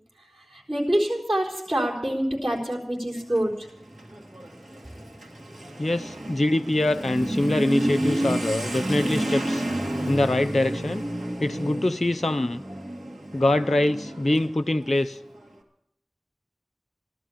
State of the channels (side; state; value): both; normal; correlation 0.96